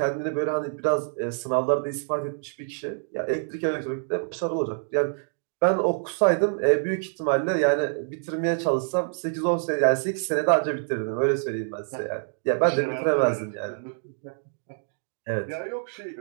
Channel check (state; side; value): silent; left; digital silence